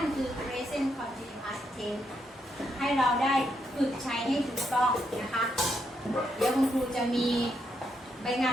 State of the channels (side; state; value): both; normal; correlation 0.79